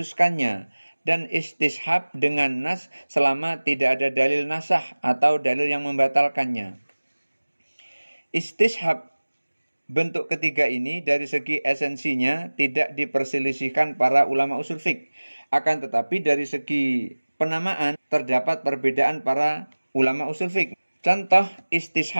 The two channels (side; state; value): both; inverted; correlation -1.00